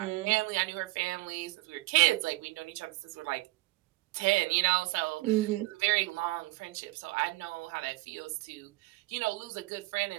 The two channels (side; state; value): left; quieter; 20.8 dB